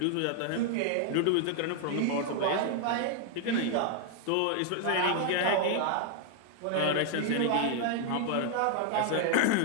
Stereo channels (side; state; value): both; different; correlation 0.00